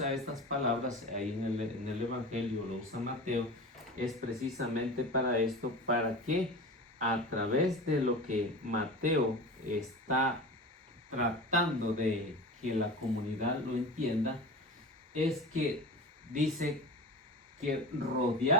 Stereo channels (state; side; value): normal; both; correlation 0.31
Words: estas palabras ahí en el Evangelio, lo usa Mateo, es precisamente para esto, para que a través de lo que Mateo está tratando de que la comunidad lo entienda, es que dice que